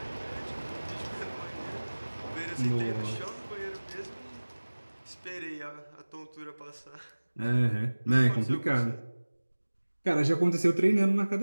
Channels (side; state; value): both; inverted; correlation -1.00